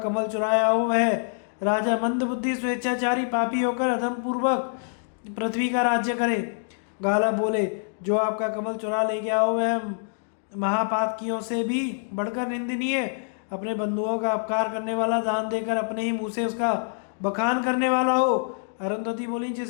चुराया हो वह राजा मंदबुद्धि स्वेच्छाचारी पापी होकर अधम पूर्वक पृथ्वी का राज्य करे। गालव बोले, जो आपका कमल चुरा ले गया हो वह महापातकियों से भी बढ़कर निंदनीय, अपने बंधुओं का अपकार करने वाला, दान देकर अपने ही मुंह से उसका बखान करने वाला हो। अरुंधति बोली,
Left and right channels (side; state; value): right; silent; digital silence